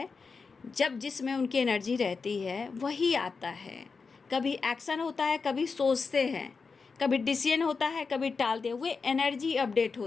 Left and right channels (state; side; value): quieter; right; 4.8 dB